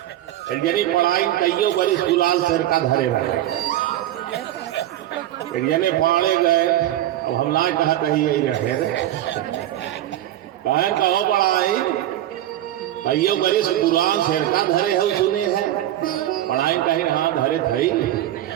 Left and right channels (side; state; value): left; quieter; 13.3 dB